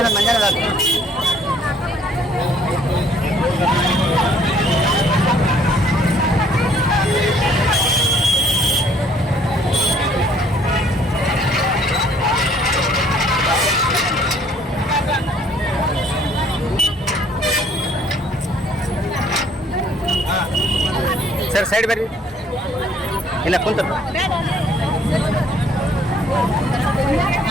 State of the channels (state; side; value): normal; both; correlation 0.61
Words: ಮಂಜಾನ ಸರ್ ಸೈಡ್ ಬರ್ರಿ. ಇಲ್ಲ ಕುಂತ